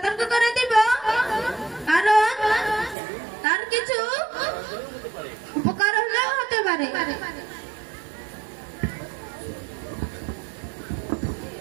করে দিব, কারণ তার কিছু উপকার হলেও হতে পারে।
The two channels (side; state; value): left; drops out; at 3.0 s